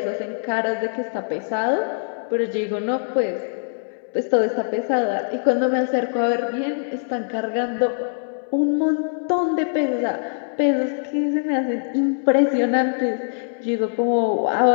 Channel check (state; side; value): silent; right; 64 dB below the other